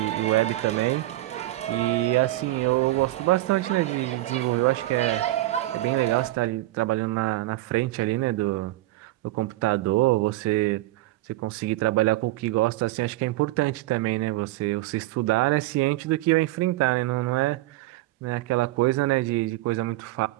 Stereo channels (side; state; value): left; quieter; 17.2 dB